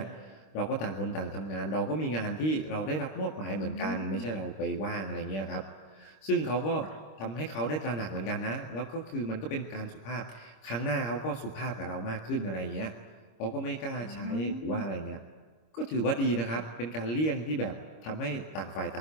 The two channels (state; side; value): late; right; 26 ms